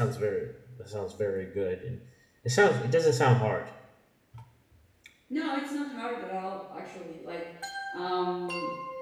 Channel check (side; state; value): both; identical; correlation 1.00